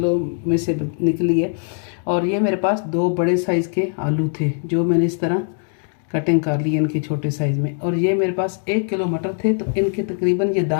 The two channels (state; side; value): silent; right; 55 dB below the other